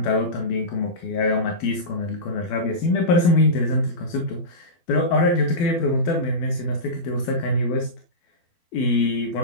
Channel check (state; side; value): late; right; 12 ms